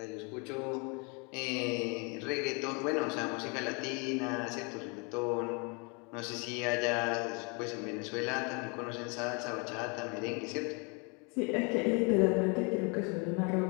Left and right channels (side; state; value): right; quieter; 32.8 dB